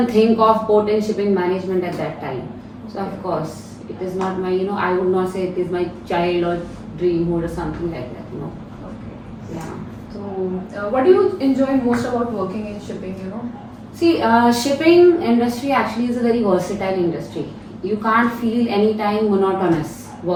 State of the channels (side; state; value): both; identical; correlation 1.00